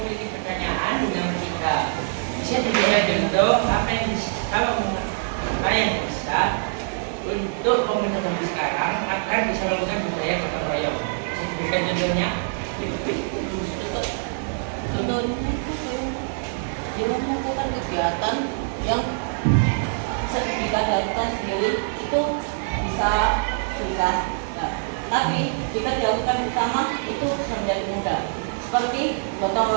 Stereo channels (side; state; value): left; silent; digital silence